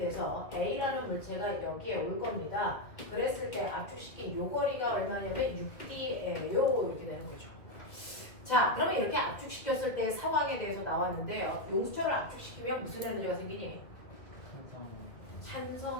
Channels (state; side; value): late; right; 1.9 ms